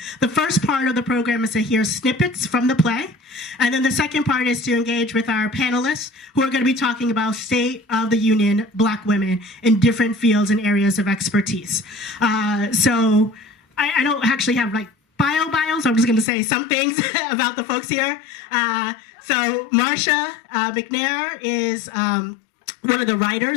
The first part of the program is to hear snippets from the play, and then the second part is to engage with our panelists who are going to be talking about State of the Union Black women in different fields and areas of expertise. So I don't actually have like bios, so I'm just going to say some things about the folks here. So Marsha McNair is one of the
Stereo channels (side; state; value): right; drops out; at 16.2 s